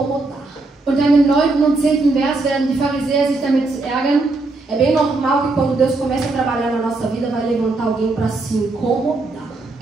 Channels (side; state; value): left; quieter; 3.3 dB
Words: Und dann im 9. und 10. Vers werden die Pharisäer sich damit ärgern. É bem normal que quando Deus começa a trabalhar na nossa vida, vai levantar alguém para se incomodar.